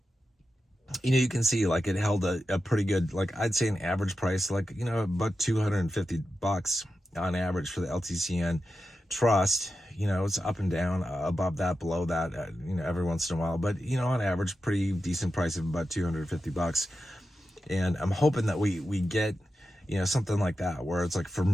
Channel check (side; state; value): both; normal; correlation 0.90